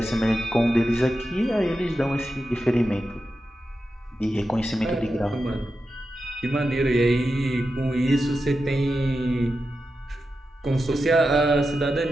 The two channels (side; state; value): both; normal; correlation 0.90